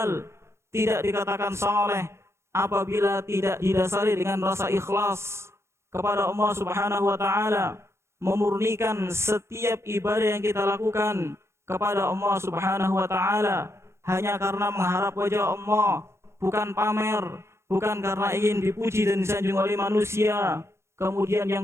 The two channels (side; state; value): left; late; 0.13 ms